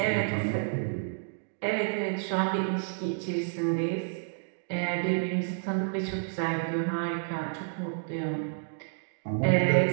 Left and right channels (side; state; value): left; silent; digital silence